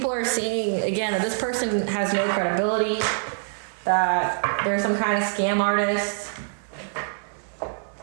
are seeing, again, that this person has no credibility, that they're some kind of scam artist.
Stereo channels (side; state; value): left; silent; 62 dB below the other